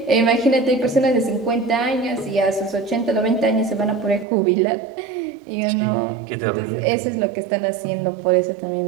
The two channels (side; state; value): left; drops out; at 4.2 s